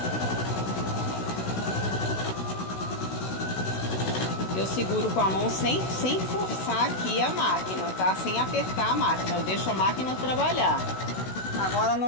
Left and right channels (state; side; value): late; right; 16 ms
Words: Eu seguro com a mão sem forçar aqui a máquina, tá? Sem apertar a máquina, eu deixo a máquina trabalhar. Agora